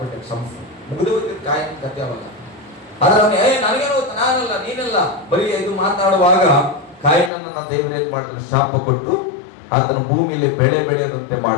ಕ್ಷಮಿಸ, ಮುಗಿದು ಹೋಗ್ತಿದ್ ಕಾಯಿನ ಕಥೆ ಅವಲ್ಲ. ಆದ್ರೆ ಅವನು ನನಗೇನು ಗೊತ್ತ, ನಾನಲ್ಲ ನೀನಲ್ಲ, ಬರೀ ಇದು ಮಾತಾಡುವಾಗ ಕಾಯಿನನ್ನ ದೇವರು ಏನ್ ಮಾಡಿದ್ರು? ಶಾಪ ಕೊಟ್ಟು ಆತನ ಭೂಮಿಯಲ್ಲಿ ಬೆಳೆ ಬೆಳೆಯದಂತೆ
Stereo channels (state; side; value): drops out; right; at 7.3 s